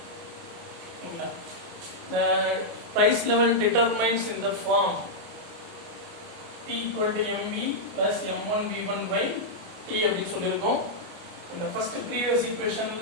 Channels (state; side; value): late; left; 29 ms